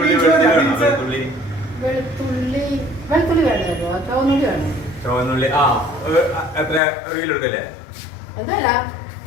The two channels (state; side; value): drops out; right; at 6.8 s